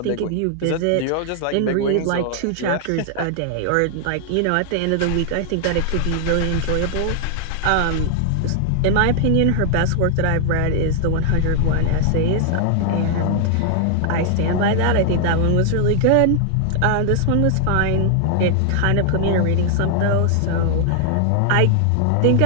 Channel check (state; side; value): different; both; correlation 0.00